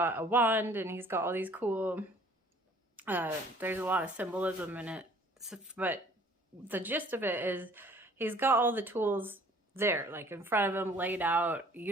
a wand and he's got all these cool, there's a lot of symbolism in it, but the gist of it is he's got all the tools there, like in front of him, laid out.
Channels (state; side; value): normal; both; correlation 0.54